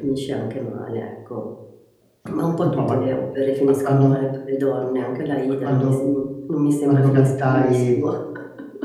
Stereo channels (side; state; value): both; identical; correlation 1.00